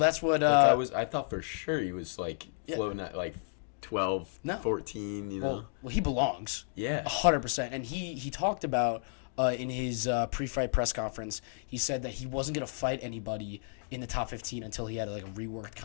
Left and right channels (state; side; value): silent; right; digital silence